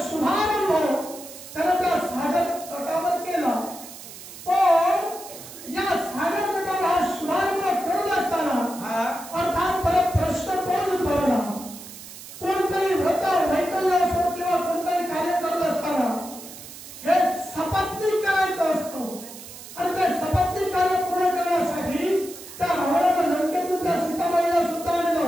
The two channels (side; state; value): right; noise; hiss, 15 dB below the sound